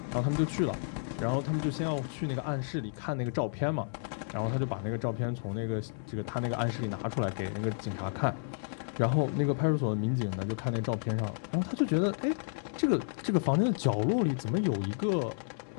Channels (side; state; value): right; silent; digital silence